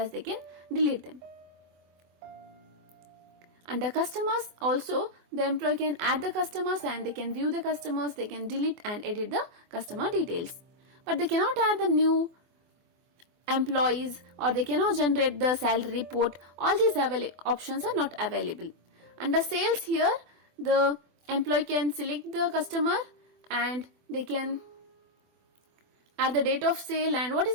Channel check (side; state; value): left; late; 24 ms